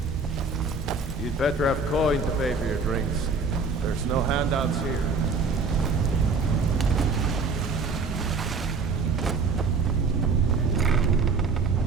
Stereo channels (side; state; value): left; quieter; 4.3 dB